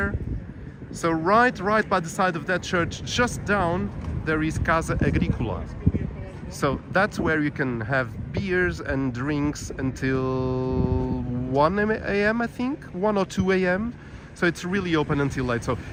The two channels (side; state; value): both; identical; correlation 1.00